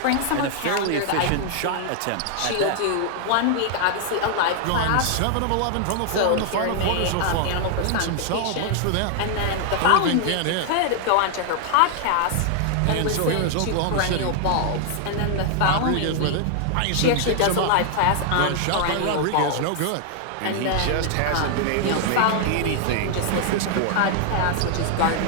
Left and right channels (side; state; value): both; different; correlation 0.00